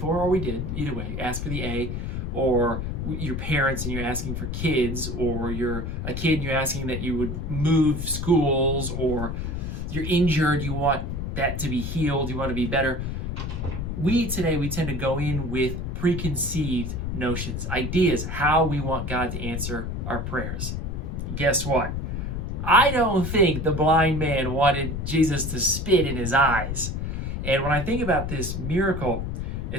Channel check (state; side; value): noise; left; rumble, 3 dB below the sound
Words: or we did, either way, ask for the A, or your parents and you're asking for kids, or you're a kid and you're asking that you would move schools, or you're injured, you want that to be healed, you want to be better. We tend to go in with preconceived notions, ideas, how we want God to answer our prayers. Guess what? I don't think the blind man wanted Jesus to spit in his eyes. And when I think about this miracle,